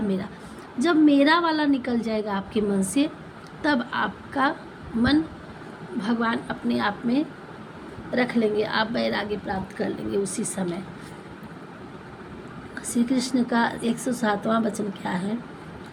मेरा, जब मेरा वाला निकल जाएगा आपके मन से, तब आपका मन भगवान अपने आप में रख लेंगे, आप वैराग्य प्राप्त कर लेंगे उसी समय। श्री कृष्ण का 107वां वचन क्या है?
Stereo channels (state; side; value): identical; both; correlation 1.00